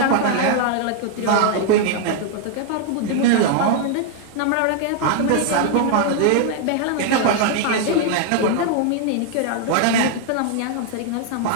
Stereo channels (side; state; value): both; different; correlation 0.00